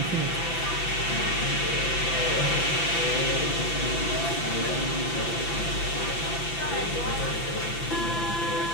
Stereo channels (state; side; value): late; right; 5.9 ms